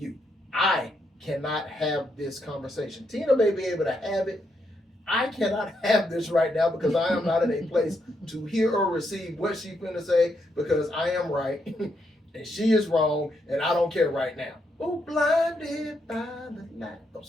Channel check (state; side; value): normal; both; correlation 0.79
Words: I cannot have this conversation. Tina may be able to have it. I cannot have this right now because I am not in a place to hear or receive what she's finna say, because I am right and she is wrong and I don't care right now. Oh, blinded by the light. Oh,